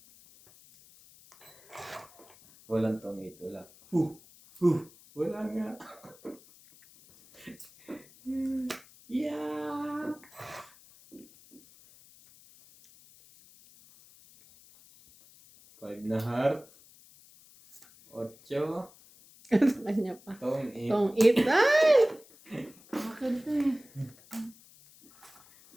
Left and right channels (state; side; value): noise; left; hiss, 25 dB below the sound